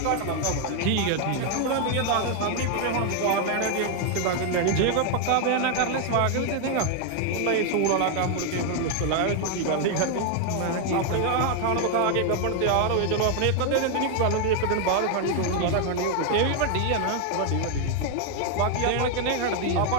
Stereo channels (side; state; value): both; different; correlation 0.00